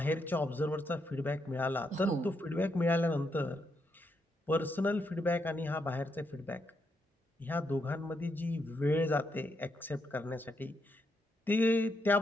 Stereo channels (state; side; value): normal; both; correlation 0.80